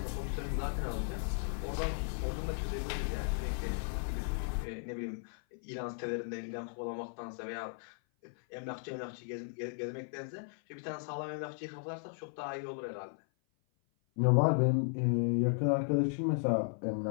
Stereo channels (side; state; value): right; silent; 54 dB below the other